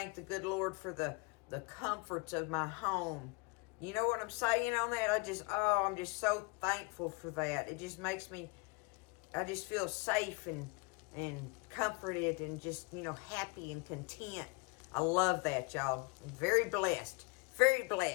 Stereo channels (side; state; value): right; quieter; 30.8 dB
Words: the good Lord for the comforts of my home. You know what I'm saying on that? I'm just so thankful for that. It just makes me, I just feel safe and comforted and just, happy and content. I love that, y'all. I'm very blessed. Very